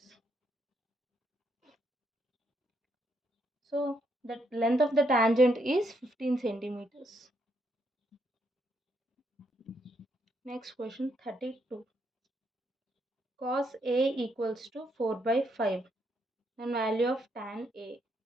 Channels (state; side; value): normal; both; correlation 0.76